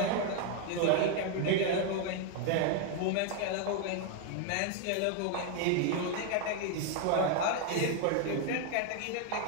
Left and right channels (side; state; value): both; different; correlation 0.01